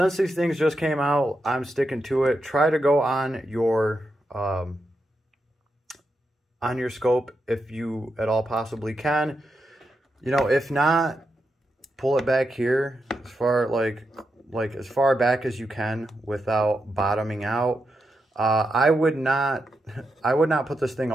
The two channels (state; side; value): normal; both; correlation 0.86